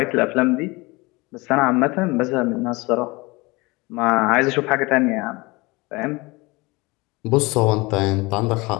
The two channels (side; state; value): right; quieter; 24.1 dB